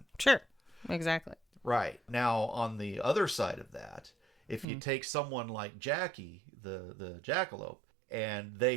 Sure. Exactly. Right. Now, on the other side of that, if you take someone like Jackie, the jackalope, and they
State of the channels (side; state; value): left; drops out; at 4.7 s